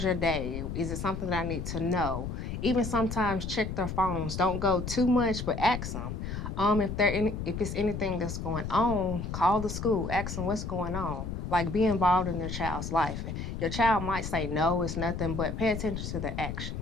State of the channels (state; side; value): noise; left; rumble, 5 dB below the sound